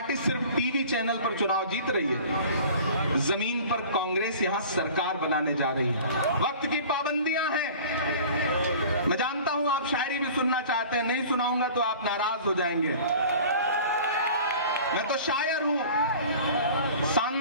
सिर्फ टीवी चैनल पर चुनाव जीत रही है, जमीन पर कांग्रेस यहां सरकार बनाने जा रही है। वक्त की पाबंदियां हैं। मैं जानता हूं आप शायरी भी सुनना चाहते हैं, नहीं सुनाऊंगा तो आप नाराज हो जाएंगे। मैं तो शायर हूं,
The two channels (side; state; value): both; inverted; correlation -0.43